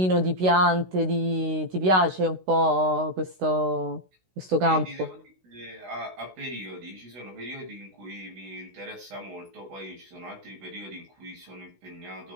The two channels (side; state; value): left; late; 16 ms